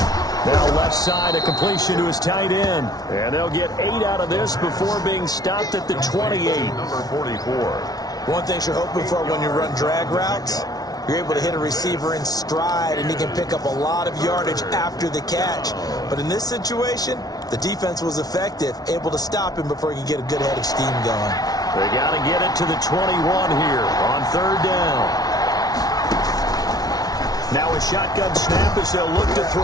Now left side, a completion to his tight end. And they'll get 8 out of this before being stopped at the 28. Number 44. One thing you're hoping for when you run drag routes, you're able to hit a receiver in stride, and he can pick up a lot of yardage after the catch. But in this situation, the defense was effective, able to stop him before he could get a good head of steam going. They got to get it to the 21 here on third down. Now a shotgun snap as they'll look to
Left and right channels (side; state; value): right; late; 0.19 ms